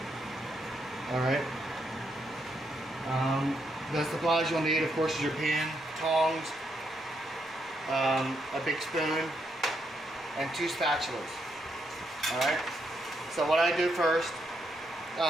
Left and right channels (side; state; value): both; normal; correlation 0.79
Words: Alright. The supplies you'll need, of course, is your pan, tongs, a big spoon, and 2 spatulas. Alright. So what I do first,